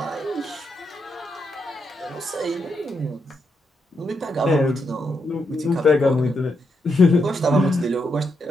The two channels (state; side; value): normal; both; correlation 0.81